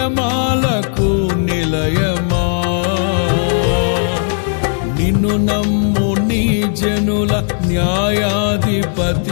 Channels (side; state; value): right; silent; digital silence